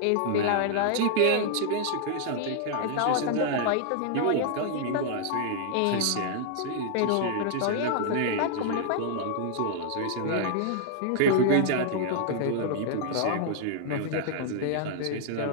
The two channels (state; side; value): different; both; correlation -0.01